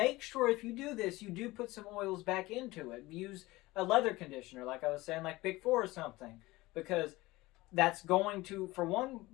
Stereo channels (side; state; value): right; quieter; 19.8 dB